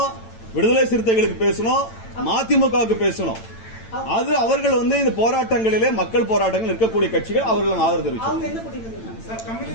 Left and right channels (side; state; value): right; late; 8.9 ms